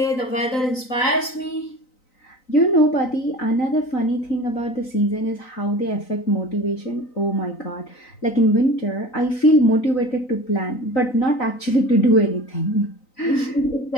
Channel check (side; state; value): right; late; 3.9 ms